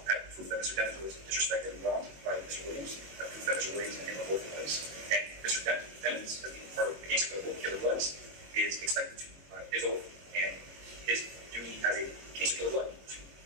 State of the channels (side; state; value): left; late; 22 ms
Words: That proof that Mr. Dennis was disrespected and wronged by Mr. Williams. That proof that Mr. Williams and him are both police. And Mr. Dennis, as being part of the gangster killer bloods, is expected to his oath and his duty as a gangster killer blood to